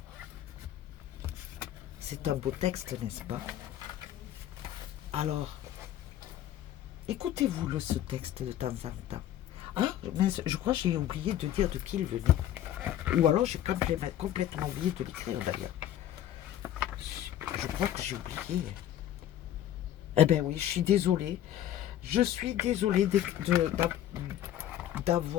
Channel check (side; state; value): right; quieter; 11.8 dB